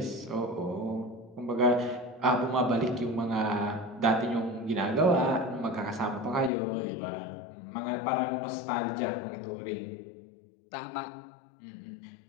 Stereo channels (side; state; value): right; drops out; at 6.5 s